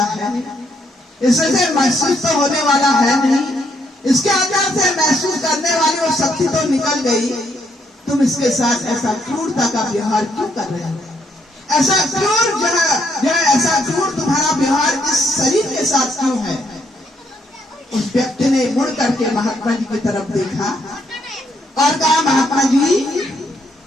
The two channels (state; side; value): normal; both; correlation 0.73